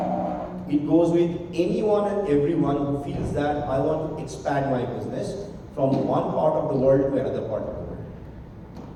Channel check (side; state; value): both; identical; correlation 1.00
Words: It goes with anyone and everyone who feels that I want to expand my business from one part of the world to another part of the world.